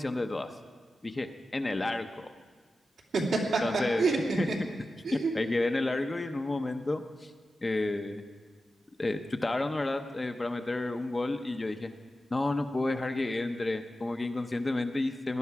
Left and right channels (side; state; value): both; normal; correlation 0.92